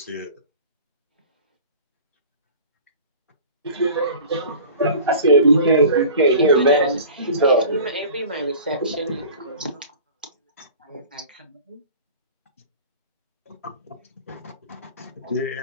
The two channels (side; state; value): both; inverted; correlation -0.41